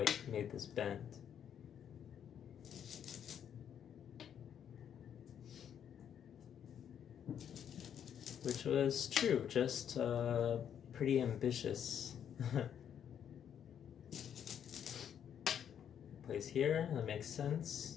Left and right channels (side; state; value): right; quieter; 8.9 dB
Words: made this bend. Which was true, just pretty ambitious. Plays here, that makes